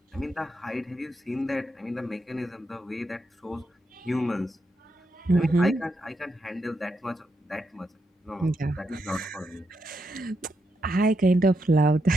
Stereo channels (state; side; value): normal; both; correlation 0.82